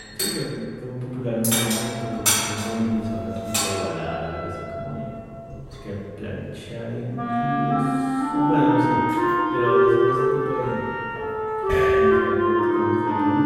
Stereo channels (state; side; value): identical; both; correlation 1.00